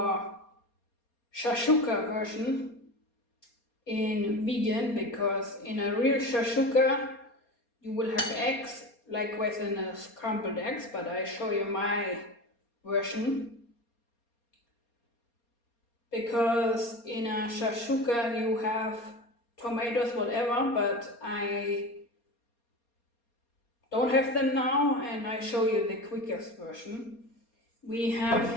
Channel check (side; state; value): right; late; 4.3 ms